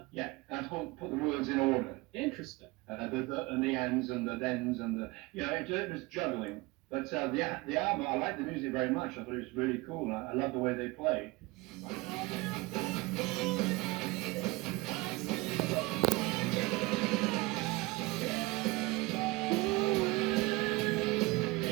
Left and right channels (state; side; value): quieter; left; 22.8 dB